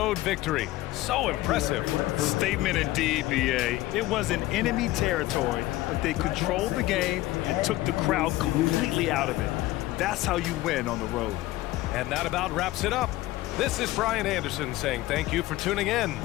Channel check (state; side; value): quieter; right; 17.2 dB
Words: victory. So impressive. Statement indeed, BA. It wasn't enemy territory, but they controlled the game and took the crowd completely out of it. That's how you win on the road. And that about wraps it up. This is Brian Anderson saying thank you for tuning in.